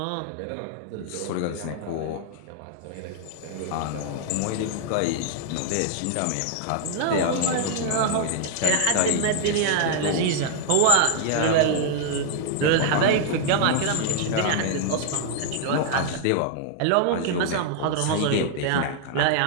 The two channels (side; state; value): both; different; correlation -0.01